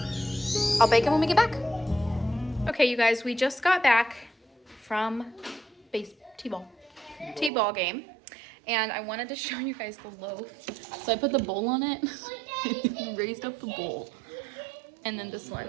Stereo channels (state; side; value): drops out; left; at 7.5 s